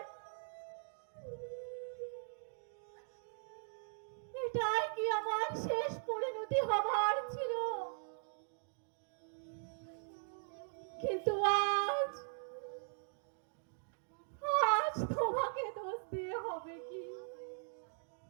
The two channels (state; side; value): silent; left; digital silence